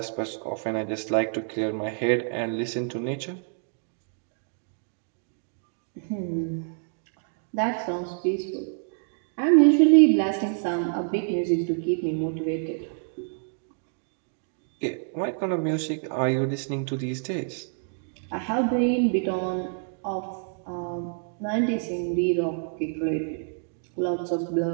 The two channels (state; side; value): silent; left; 60 dB below the other